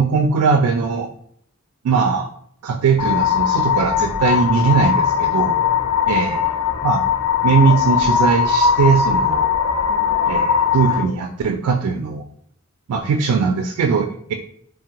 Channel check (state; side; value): normal; both; correlation 0.14